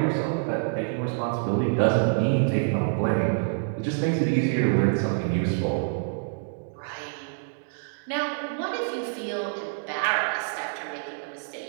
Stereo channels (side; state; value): left; silent; digital silence